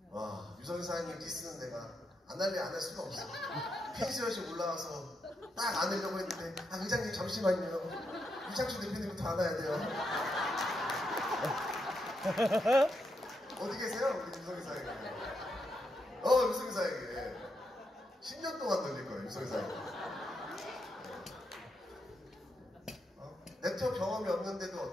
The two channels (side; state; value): both; normal; correlation 0.82